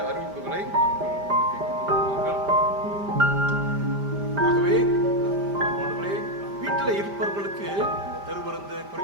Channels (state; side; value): late; left; 5.0 ms